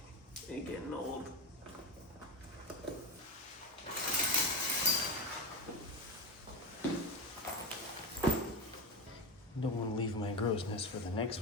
ain't getting old. Don't want to leave my grossness for the next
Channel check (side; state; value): both; normal; correlation 0.18